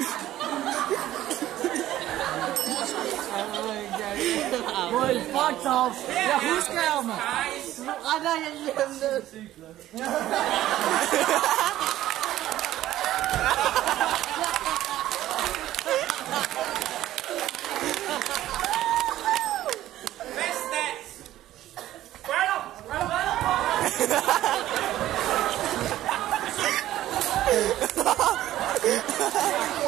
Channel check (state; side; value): quieter; left; 13.9 dB